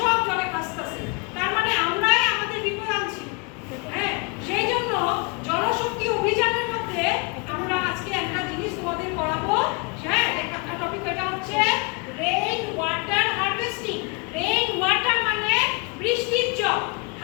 জলে ভাসতেছে। তার মানে আমরাই আমাদের বিপদ আনছি। হ্যাঁ, সেই জন্য জলশক্তি অভিযানের মধ্যে আমরা আজকে একটা জিনিস তোমাদের করাবো। হ্যাঁ, একটা টপিক, এটা হচ্ছে rain water harvesting. Rain water মানে বৃষ্টির জল,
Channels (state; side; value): quieter; right; 31.1 dB